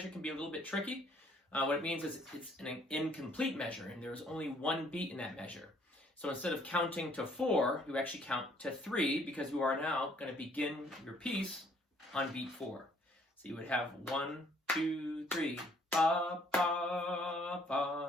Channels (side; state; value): both; normal; correlation 0.63